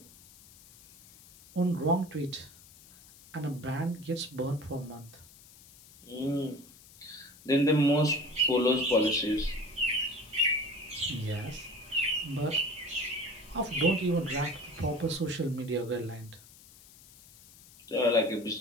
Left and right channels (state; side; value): noise; left; hiss, 23 dB below the sound